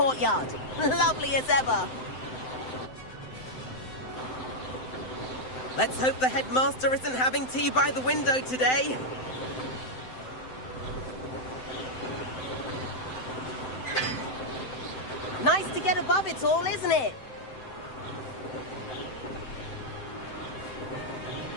Lovely as ever. Let's hope the headmaster isn't having tea by the window today. Nice to get above it all, isn't it?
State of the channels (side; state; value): right; late; 7.8 ms